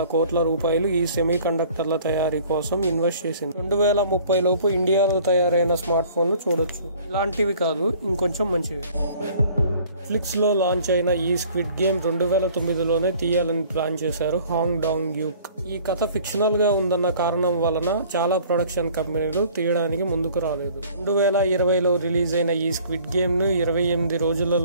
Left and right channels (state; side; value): inverted; both; correlation -0.52